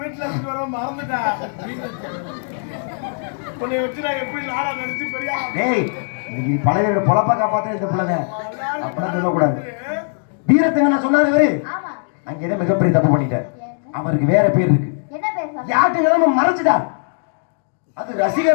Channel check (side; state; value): right; silent; digital silence